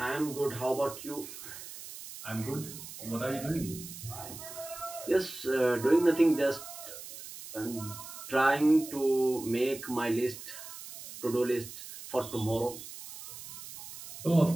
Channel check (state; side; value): noise; right; hiss, 13 dB below the sound